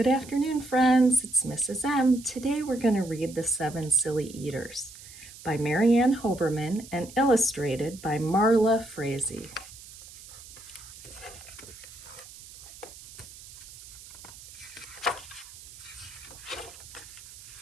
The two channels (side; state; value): right; noise; hiss, 17 dB below the sound